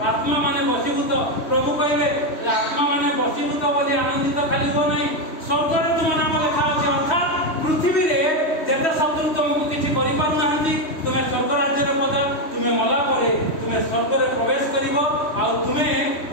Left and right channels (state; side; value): late; right; 3.1 ms